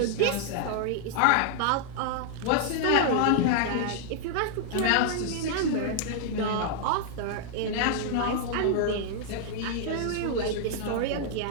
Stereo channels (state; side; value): different; both; correlation -0.01